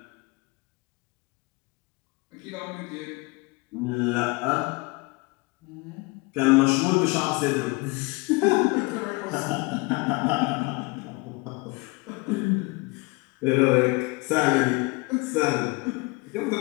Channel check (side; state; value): right; quieter; 26.6 dB